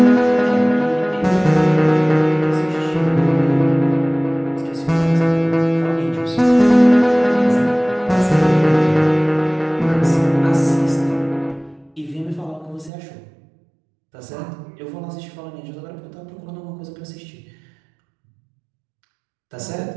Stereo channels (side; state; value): left; drops out; at 12.9 s